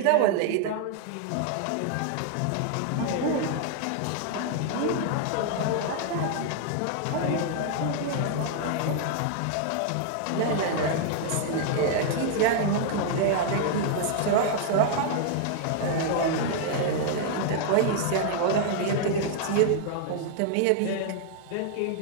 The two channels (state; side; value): different; both; correlation 0.00